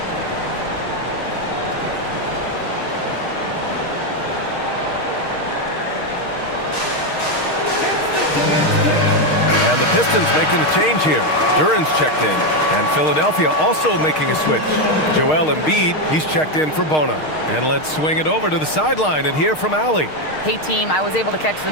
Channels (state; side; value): late; right; 6.5 ms